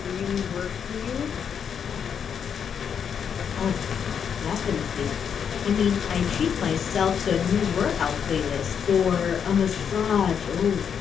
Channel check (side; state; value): right; quieter; 7.5 dB